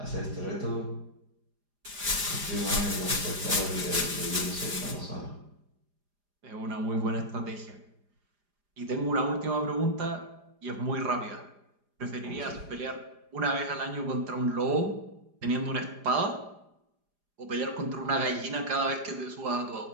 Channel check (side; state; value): left; late; 4.9 ms